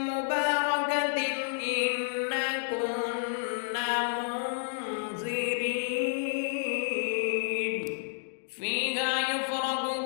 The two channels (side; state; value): right; silent; digital silence